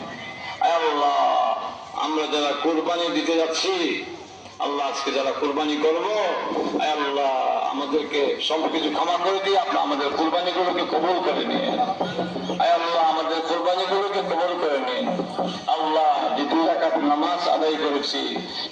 আয় আল্লাহ, আমরা যারা কুরবানি দিতে যাচ্ছি আল্লাহ আজকে যারা কুরবানি করবো আয় আল্লাহ আমাদেরকে সবকিছু ক্ষমা করে দিয়ে আপনি আমাদের কুরবানি গুলোকে কবুল করে নিন। আয় আল্লাহ, আমাদের কুরবানি গুলোকে কবুল করে নিন। আল্লাহ, যে 2 রাকাত নামাজ আদায় করেছি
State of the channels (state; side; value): identical; both; correlation 1.00